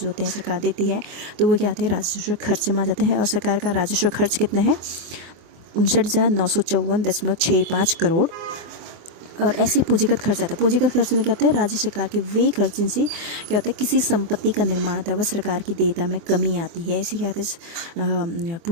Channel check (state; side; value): late; left; 24 ms